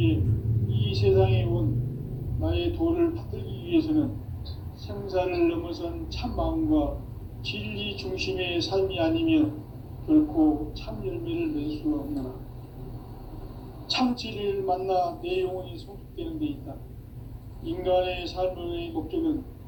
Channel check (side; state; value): both; identical; correlation 1.00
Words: 이 세상에 온 나의 도를 받들기 위해서는 생사를 넘어선 참마음과 진리 중심의 삶이 아니면 결코 참 열매를 맺을 수가 없노라. 참 진리를 만나 내 영혼이 성숙되는 데 있다. 인간의 삶의 목적은